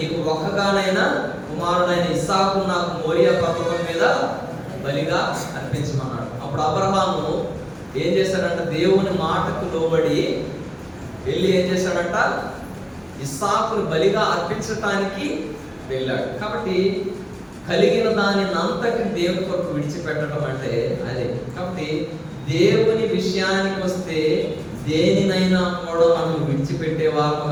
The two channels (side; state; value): both; identical; correlation 1.00